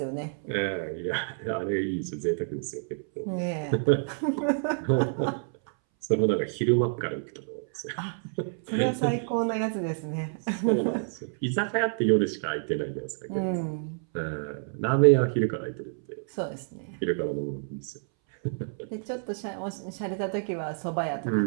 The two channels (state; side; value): silent; left; 59 dB below the other